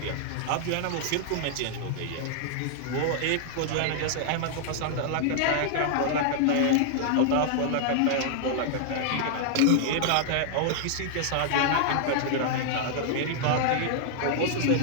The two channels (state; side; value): different; both; correlation -0.01